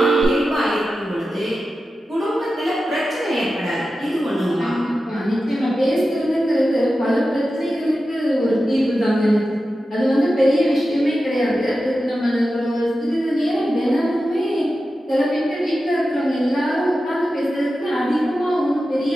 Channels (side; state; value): both; normal; correlation 0.92